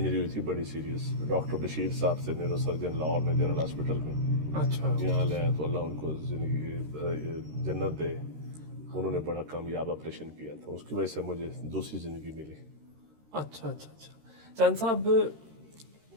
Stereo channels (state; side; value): late; left; 13 ms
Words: ہوئی تھی بڑی سیریس، ڈاکٹر بشیر صاحب سے نیورو سرجن لاہور میں جنرل ہاسپٹل میں، اچھا یہاں لے آئے تو اللہ ان کو زندگی جنت دے، انہوں نے بڑا کامیاب آپریشن کیا تھا، اس کی وجہ سے مجھے دوسری زندگی ملی۔ اچھا اچھا اچھا چند صاحب،